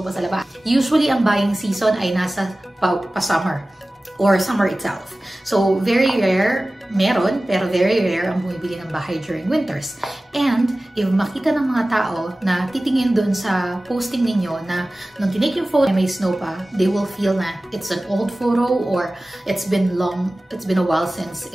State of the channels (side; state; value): both; normal; correlation 0.97